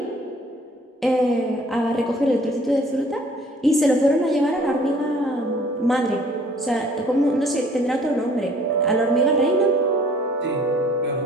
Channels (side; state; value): both; normal; correlation 0.55